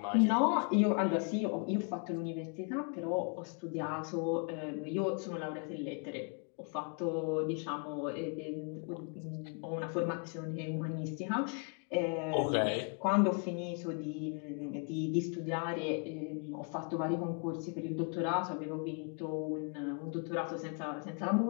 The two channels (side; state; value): right; quieter; 35.7 dB